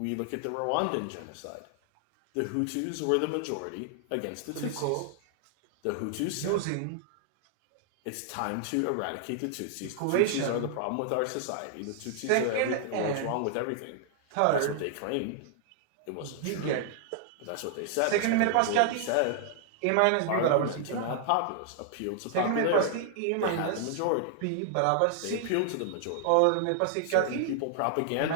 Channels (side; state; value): both; different; correlation -0.01